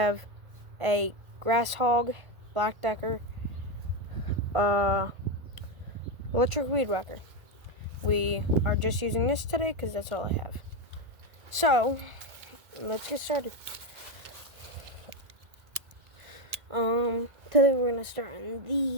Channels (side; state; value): left; late; 1.5 ms